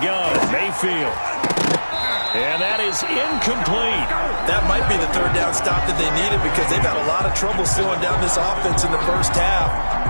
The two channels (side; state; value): both; inverted; correlation -1.00